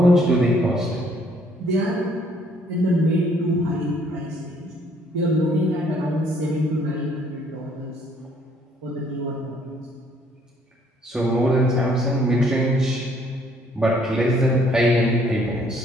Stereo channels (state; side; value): normal; both; correlation 0.64